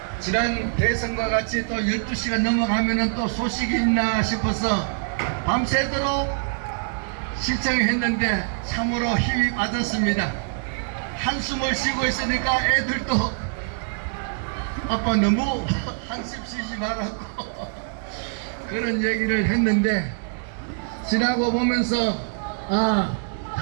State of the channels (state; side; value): silent; left; digital silence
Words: 지난 대선과 같이 또 12시가 넘어가면은 또 소식이 있나 싶어서 밤새도록 신청했는데 참으로 힘이 빠졌습니다. 한숨을 쉬고 있으니까 애들도 아빠 너무 한숨 쉬지 말라고 그런 얘기를 했는데 지나고 보면서